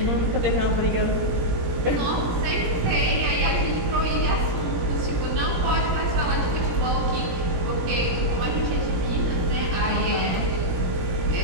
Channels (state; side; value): late; left; 17 ms